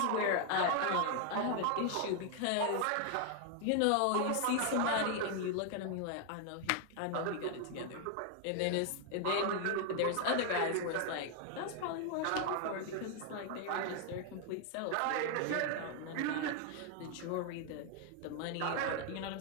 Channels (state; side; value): different; both; correlation 0.00